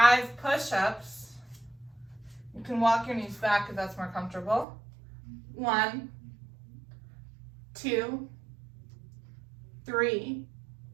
push-ups. You can walk your knees back if that's more comfortable. 1, 2, 3,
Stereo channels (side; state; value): left; drops out; at 4.7 s